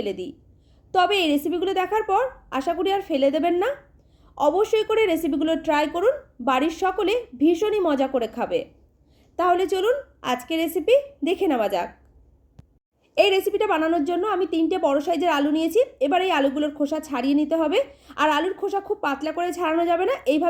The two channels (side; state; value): both; identical; correlation 1.00